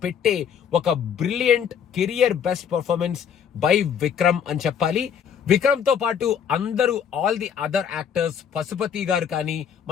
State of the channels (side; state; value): right; quieter; 7.9 dB